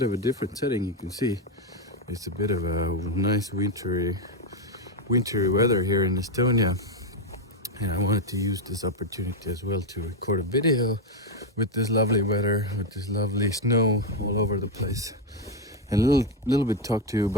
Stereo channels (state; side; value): normal; both; correlation 0.05